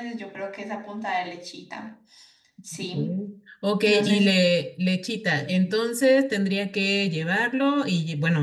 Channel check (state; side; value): identical; both; correlation 1.00